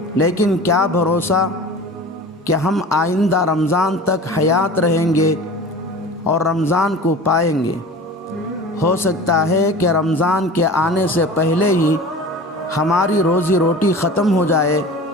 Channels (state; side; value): normal; both; correlation 0.37